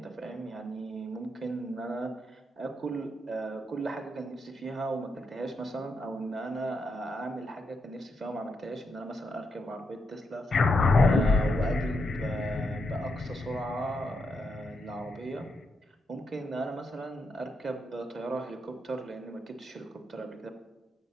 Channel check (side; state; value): both; normal; correlation 0.82